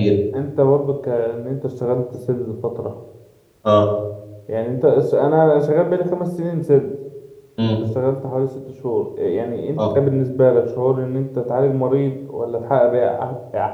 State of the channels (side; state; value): both; identical; correlation 1.00